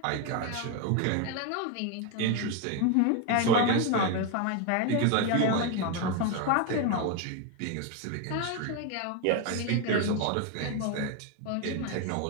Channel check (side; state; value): both; different; correlation 0.02